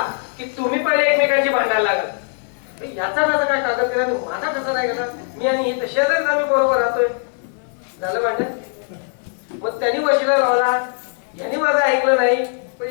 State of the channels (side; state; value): right; silent; 56 dB below the other